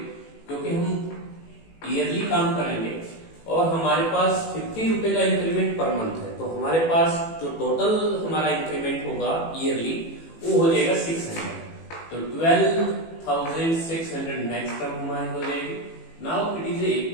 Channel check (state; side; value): late; right; 18 ms